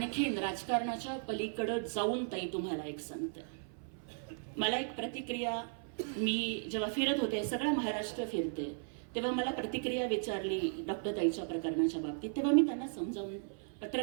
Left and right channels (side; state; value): left; silent; 54 dB below the other